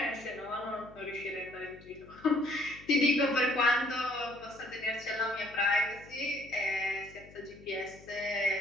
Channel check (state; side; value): noise; left; hum, 21 dB below the sound